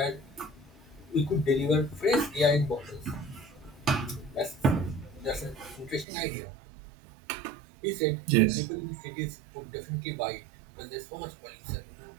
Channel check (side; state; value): left; drops out; at 6.1 s